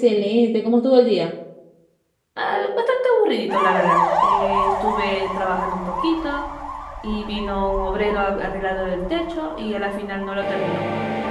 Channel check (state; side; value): identical; both; correlation 1.00